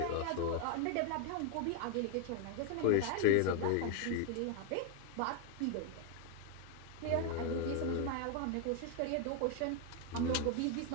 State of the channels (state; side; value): different; both; correlation 0.01